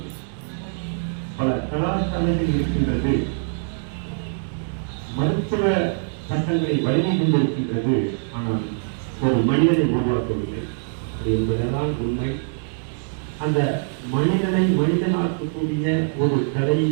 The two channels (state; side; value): silent; left; digital silence